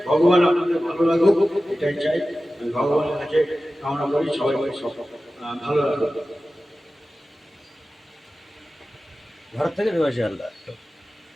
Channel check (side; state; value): both; normal; correlation 0.95